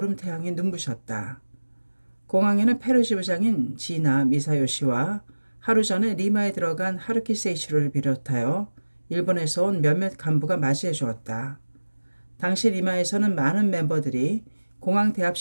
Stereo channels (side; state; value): both; inverted; correlation -1.00